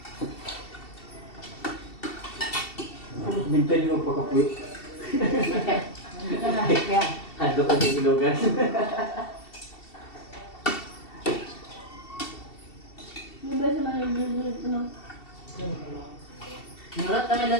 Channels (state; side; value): late; right; 2.7 ms